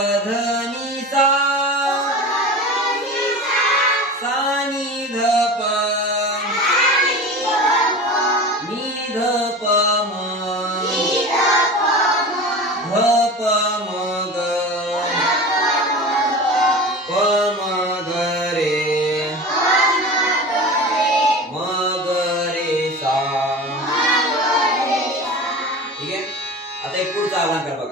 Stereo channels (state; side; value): normal; both; correlation 0.32